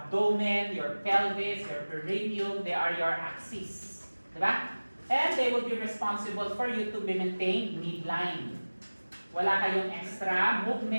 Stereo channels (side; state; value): both; inverted; correlation -1.00